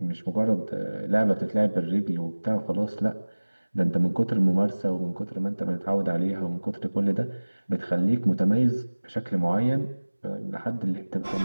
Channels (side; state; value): both; inverted; correlation -1.00